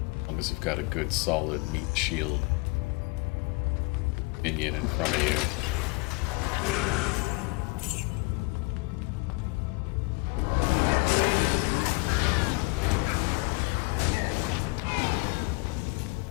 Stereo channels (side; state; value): right; quieter; 27.8 dB